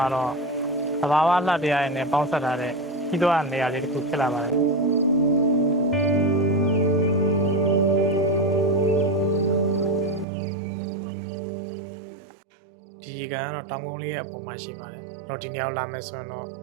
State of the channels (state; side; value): drops out; left; at 10.2 s